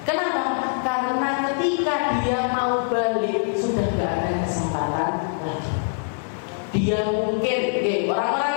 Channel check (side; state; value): right; silent; digital silence